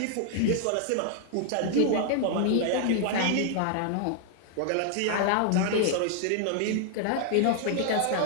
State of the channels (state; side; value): different; both; correlation 0.00